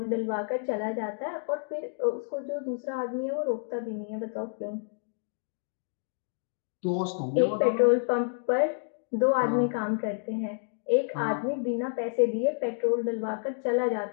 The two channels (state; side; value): silent; right; digital silence